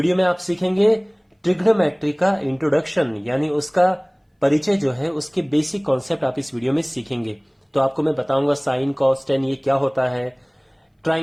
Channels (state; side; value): identical; both; correlation 1.00